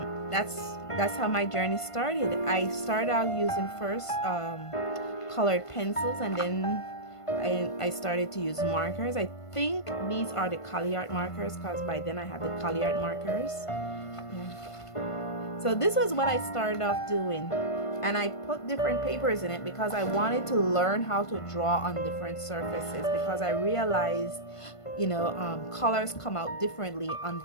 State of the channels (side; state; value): right; late; 1.5 ms